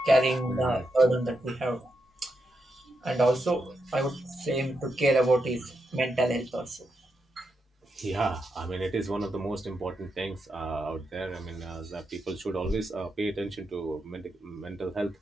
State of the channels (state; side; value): normal; both; correlation 0.84